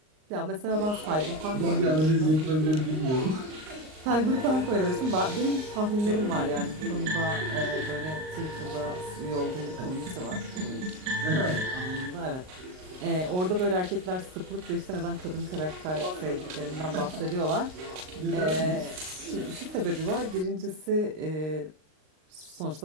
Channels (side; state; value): left; late; 38 ms